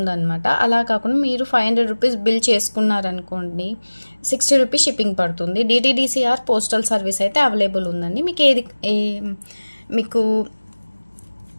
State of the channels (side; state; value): both; inverted; correlation -1.00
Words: అలా కాకుండా మీరు 500 రూపీస్ బిల్ చేసుకున్నారనుకోండి 60 రూపీస్ షిప్పింగ్ పడుతుంది. DTDCR పోస్టల్ సర్వీస్ అయితే అవైలబుల్ ఉందండి. మీకు